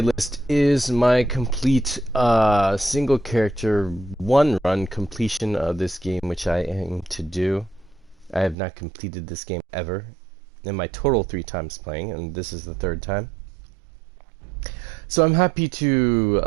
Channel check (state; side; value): drops out; left; at 8.6 s